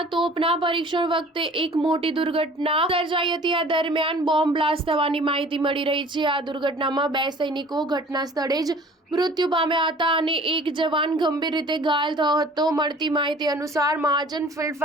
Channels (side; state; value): both; normal; correlation 0.49